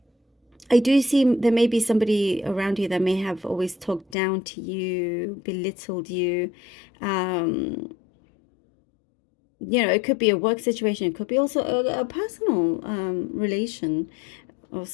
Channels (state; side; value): drops out; right; at 4.2 s